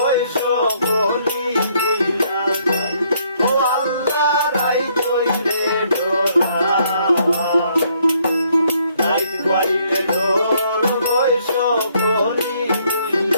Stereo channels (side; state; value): both; inverted; correlation -0.68